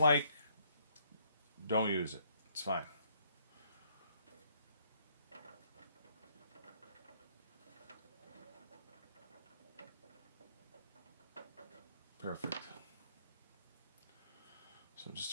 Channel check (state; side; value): inverted; both; correlation -0.67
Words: don't use it. It's fine. Perfect. So